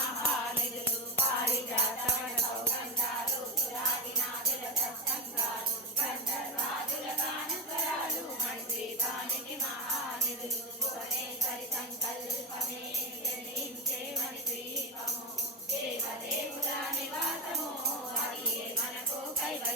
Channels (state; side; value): normal; both; correlation 0.14